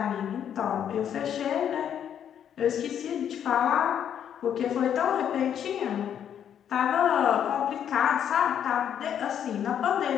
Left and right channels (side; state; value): right; quieter; 9.2 dB